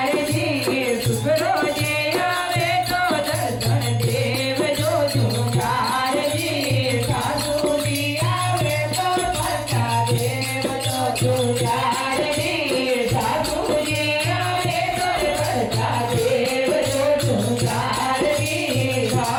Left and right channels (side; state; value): both; identical; correlation 1.00